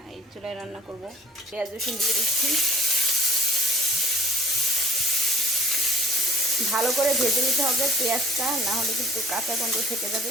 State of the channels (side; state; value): both; normal; correlation 0.51